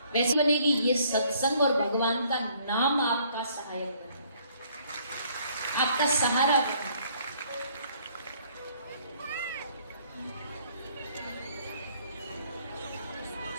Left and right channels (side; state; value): both; inverted; correlation -0.62